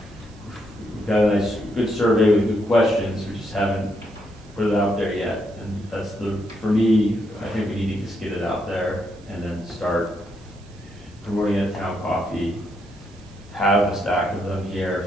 nice, good survey with good questions. We just haven't put it out there yet. And that's for me, I think we need to just get it out there and then start promoting it at Town Coffee. Have a stack of them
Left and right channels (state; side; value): noise; right; hiss, 28 dB below the sound